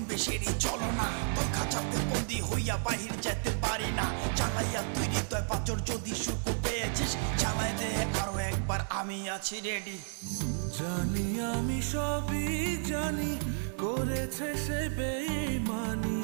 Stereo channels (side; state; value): left; silent; digital silence